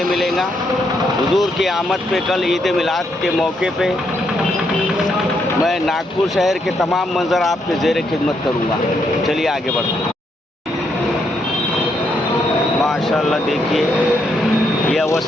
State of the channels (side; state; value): both; normal; correlation 0.76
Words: मिलेगा। हुजूर की आमद पे कल ईद मिलाद के मौके पे मैं नागपुर शहर के तमाम मंजर आपके ज़ेर खिदमत करूँगा। चलिए आगे बढ़ते हैं। माशाल्लाह देखिए ये